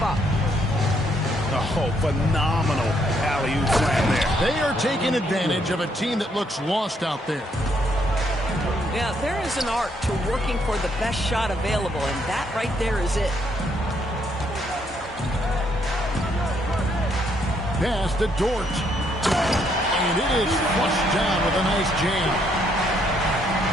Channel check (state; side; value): normal; both; correlation 0.72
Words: up. Oh, phenomenal alley-oop slam there. They are taking advantage of a team that looks lost out there. Yeah, there is an art to working for the best shot available, and that right there is it. pass to Dort. And it is flushed down with a nice jam.